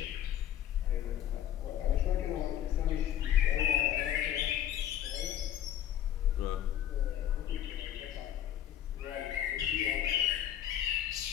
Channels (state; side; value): quieter; right; 11.1 dB